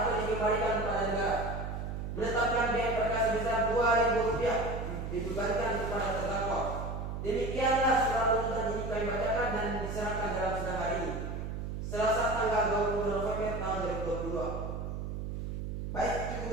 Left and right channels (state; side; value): noise; right; hum, 5 dB below the sound